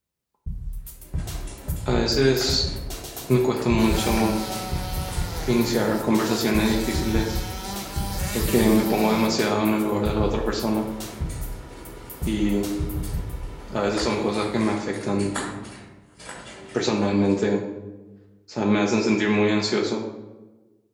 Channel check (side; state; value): both; identical; correlation 1.00